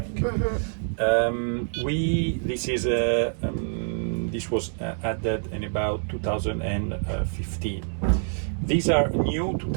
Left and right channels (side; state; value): left; silent; digital silence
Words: This was added in about 2015. These are new